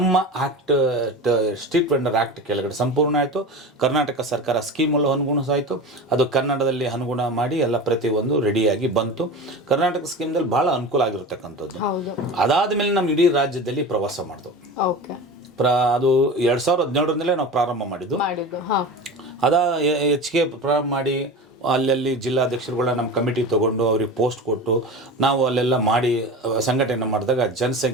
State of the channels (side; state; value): both; normal; correlation 0.30